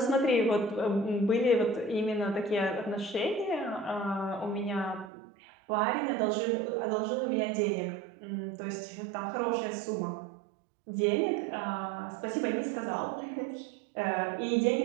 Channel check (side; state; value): left; drops out; at 5.1 s